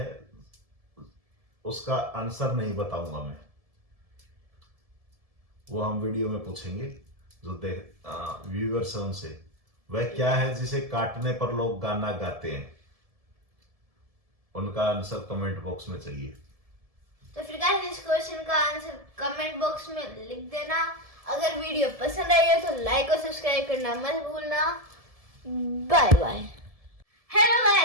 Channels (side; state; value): left; late; 1.7 ms